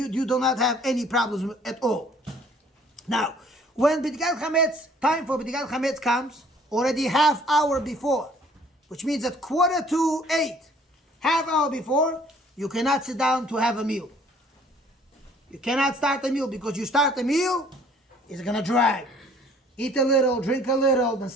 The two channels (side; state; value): both; normal; correlation 0.56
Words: do not have any problems at all. Now, when B'dikat Chametz, time for B'dikat Chametz comes, already half hour before, which means at 7:45, half hour before, you cannot sit down to have a meal. You cannot start a meal, because you start a meal, it's going to drag. Eat a little, drink a little, then